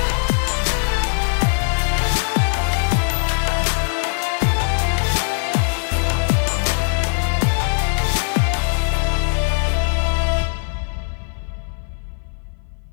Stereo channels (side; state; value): right; silent; 56 dB below the other